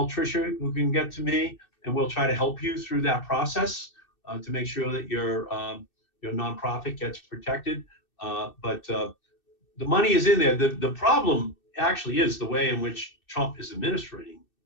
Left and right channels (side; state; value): right; late; 2.6 ms